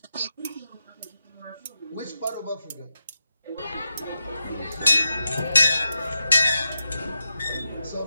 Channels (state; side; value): inverted; both; correlation -0.88